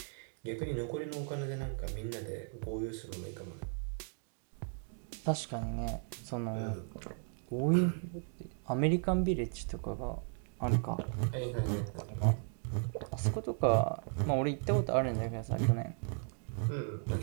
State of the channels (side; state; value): left; silent; 54 dB below the other